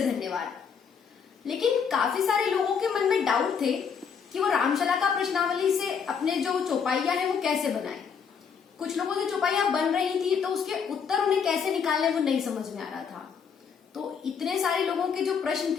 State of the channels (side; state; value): right; quieter; 6.6 dB